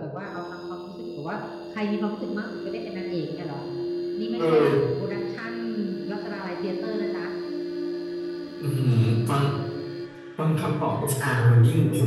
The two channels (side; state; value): both; identical; correlation 1.00